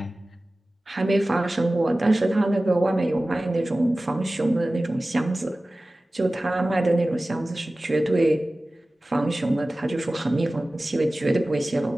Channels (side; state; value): both; normal; correlation 0.97